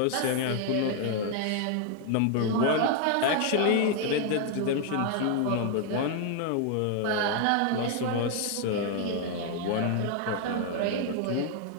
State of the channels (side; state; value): both; different; correlation 0.00